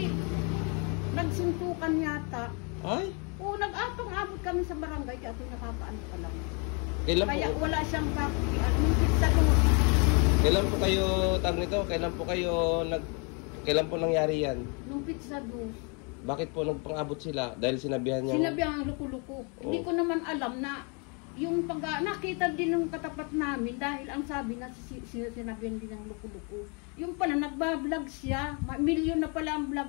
nagsuntukan yata. Ay? Oo, nag-apang-abot kami sa barangay kaya ito nakakaano pa lang. Kailan Kaya po? wala siyang pizza ko. Kailan po kayo tag nito? Kailan po nangyari yan? Nung pizza do. Bakit po nagpang-abot sila? Dahil sinabihan niya. Sinabihan ang luko-luko. Hindi ko naman alam na yung nakita din ng katapat namin dahil ang sabi na sinabihan din ng luko-luko. Yung pala nagbablog siya. Milyon na pala ang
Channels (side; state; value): right; quieter; 34.5 dB